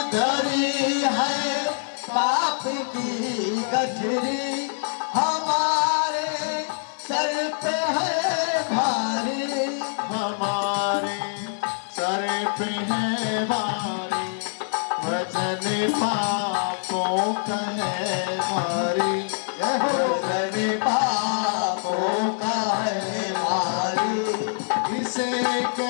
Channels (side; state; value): right; silent; digital silence